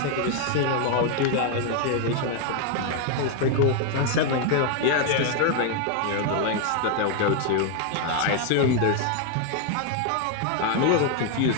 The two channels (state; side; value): different; both; correlation 0.01